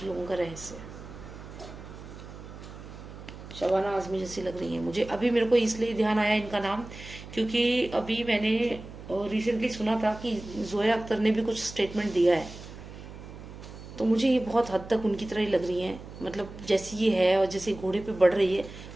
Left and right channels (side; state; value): right; noise; hum, 14 dB below the sound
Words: लोगों का रहस्य। शबाना आजमी जैसी लग रही है मुझे। अभी मेरे को इसलिए ध्यान आया इनका नाम, क्योंकि अभी मैंने रिसेंटली सुना था कि जोया अख्तर ने भी कुछ स्टेटमेंट दिया है। तो मुझे ये बहुत हद तक उनकी तरह ही लग रही हैं। मतलब जैसी ये है और जैसे घोड़े पे बढ़ रही है,